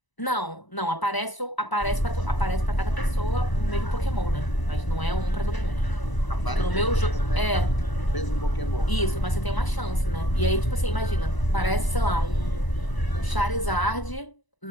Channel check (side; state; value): right; late; 1.0 ms